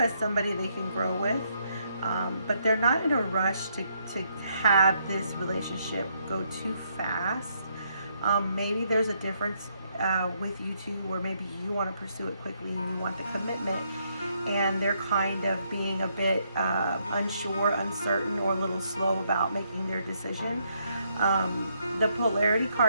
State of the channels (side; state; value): both; inverted; correlation -0.74